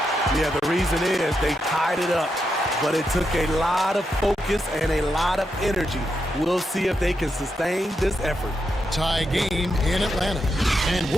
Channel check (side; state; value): both; normal; correlation 0.84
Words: Yeah, the reason is they tied it up, but it took a lot of focus and a lot of energy. We'll see if they can sustain this effort. Tie game in Atlanta. And